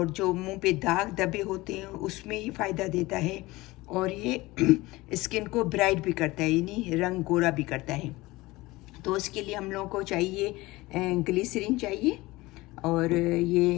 जो मुंह पे दाग धब्बे होते हैं उसमें ही फ़ायदा देता है, और ये स्किन को ब्राइट भी करता है, यानी रंग गोरा भी करता है। तो इसके लिए हम लोगों को चाहिए ग्लिसरीन चाहिए, और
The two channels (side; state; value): right; quieter; 20.4 dB